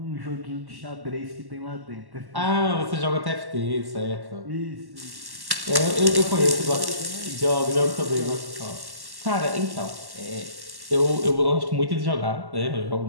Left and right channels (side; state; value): left; late; 1.1 ms